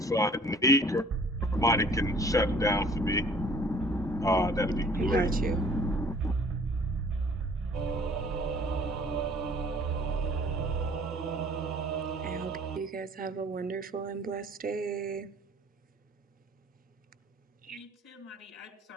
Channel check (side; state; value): both; normal; correlation 0.53